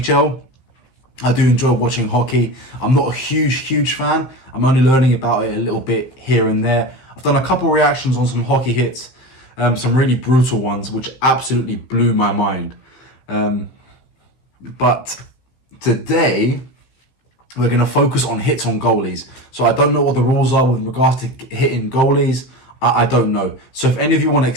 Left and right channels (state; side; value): late; right; 16 ms